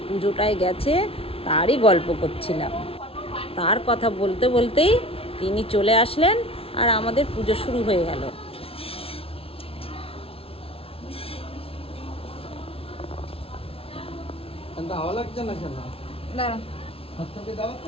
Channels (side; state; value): right; late; 0.27 ms